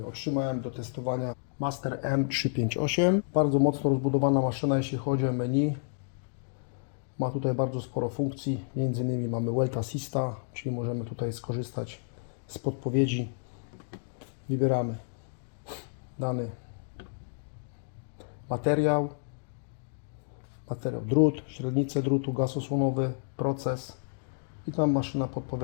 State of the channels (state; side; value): silent; right; digital silence